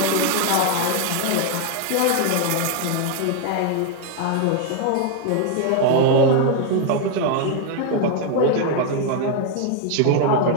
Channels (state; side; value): different; both; correlation 0.01